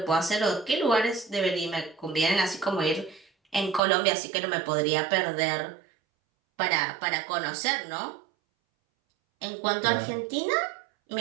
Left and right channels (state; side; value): drops out; left; at 3.8 s